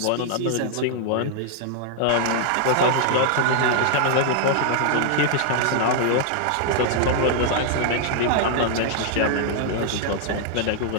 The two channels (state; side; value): different; both; correlation 0.00